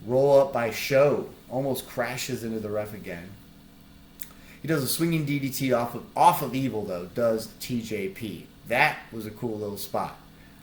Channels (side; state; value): both; identical; correlation 1.00